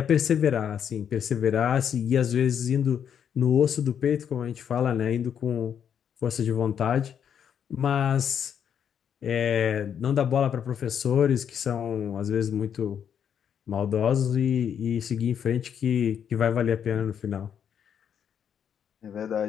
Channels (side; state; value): right; quieter; 8.4 dB